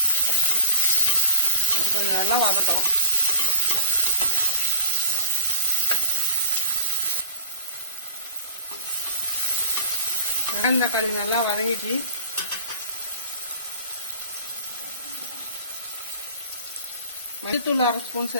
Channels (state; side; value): inverted; both; correlation -0.32